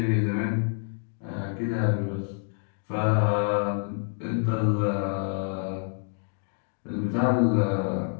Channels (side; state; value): right; silent; 57 dB below the other